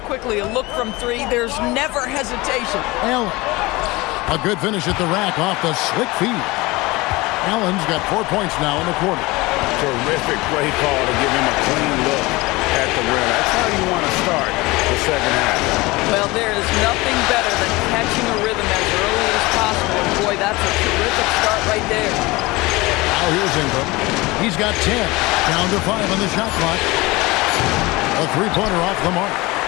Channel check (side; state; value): right; quieter; 22.1 dB